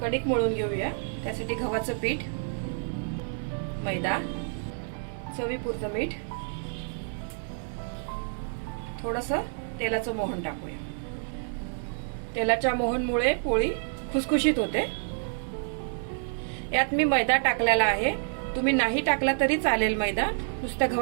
मळून घेऊया। त्यासाठी गव्हाचं पीठ, मैदा, चवीपुरतं मीठ, थोडंसं तेलाचं मोहन टाकूया। तेलाच्या मोहनमुळे पोळी खुसखुशीत होते। यात मी मैदा टाकलेला आहे। तुम्ही नाही टाकला तरी चालेल, मैदा नुसत्या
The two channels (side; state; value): left; silent; 59 dB below the other